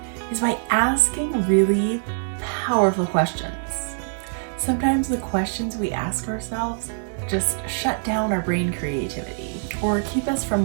is by asking really powerful questions. Sometimes the questions we ask ourselves just shut down our brain creativity or keep us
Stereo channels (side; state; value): left; silent; digital silence